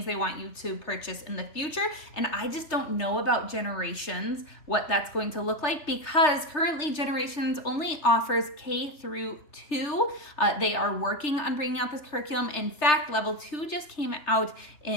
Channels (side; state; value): right; late; 3.3 ms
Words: they want you to purchase in the future, and I just don't know about Generations, what that's going to look like, because currently Generations only offers K through 2. They are working on bringing out this curriculum. In fact, level 2 just came out